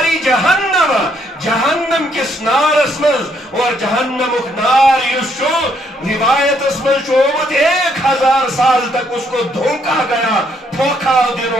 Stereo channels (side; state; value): both; normal; correlation 0.71